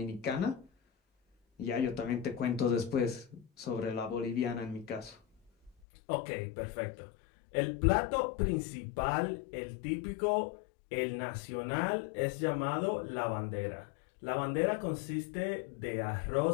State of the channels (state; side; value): drops out; right; at 5.8 s